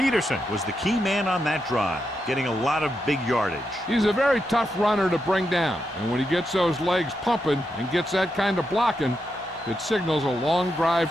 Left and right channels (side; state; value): both; normal; correlation 0.85